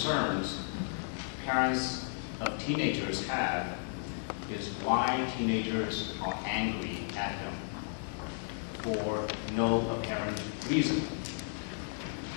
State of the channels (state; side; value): silent; right; 55 dB below the other